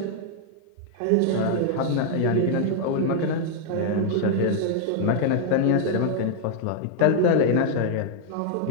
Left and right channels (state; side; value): different; both; correlation 0.00